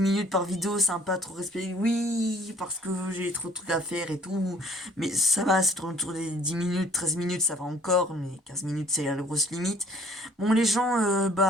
par vidéo, c'est un peu trop respecté. Oui, parce que j'ai trop de trucs à faire et tout. Mais ça va, c'est autour des 10 minutes, 13 minutes, ça va encore. Mais 15 minutes, c'est la grosse limite. Bon, les gens,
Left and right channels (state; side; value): normal; both; correlation 0.55